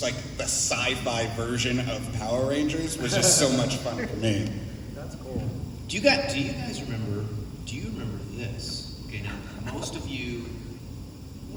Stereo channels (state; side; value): identical; both; correlation 1.00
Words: like the sci-fi version of Power Rangers was just so much fun for me. That's cool. Do you guys remember this? Okay, now most of you